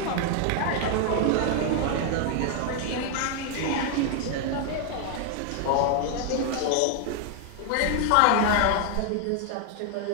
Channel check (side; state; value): both; different; correlation 0.00